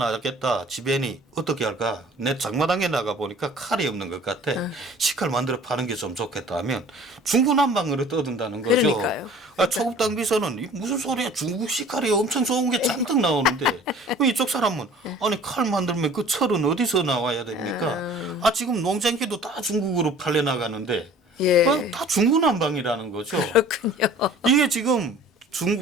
지배인이 어떻게 할까? 내 장마당에 나가 보니까 칼이 없는 것 같아. 식칼 만들어 파는 게 좀 좋겠다 하면 중구난방으로 떠든다는 거죠. 그러니까요. 초급당 비서는 무슨 소리야? 중국 식칼이 엄청 좋은 게 잔뜩 나오는데 이쪽 사람은 아니 칼 만들면 그 철은 어디서 나와야 됩니까? 지금 농장기도 다 중국으로 팔려 나가는데 예. 다 중구난방이라는 거죠. 그렇군요. 이게 지금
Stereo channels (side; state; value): both; normal; correlation 0.48